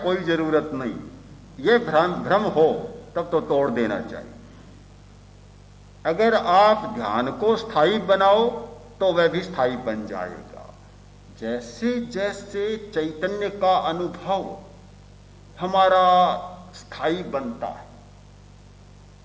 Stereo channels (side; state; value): both; identical; correlation 1.00